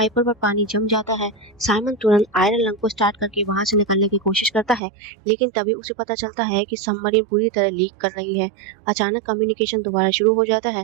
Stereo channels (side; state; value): left; drops out; at 4.8 s